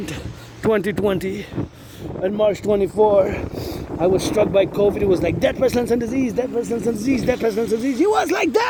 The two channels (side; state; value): both; identical; correlation 1.00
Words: 2020 and March 24, I was struck by COVID. It was like death, pestilence, and disease, death, pestilence, and disease, death, pestilence, and disease. It was like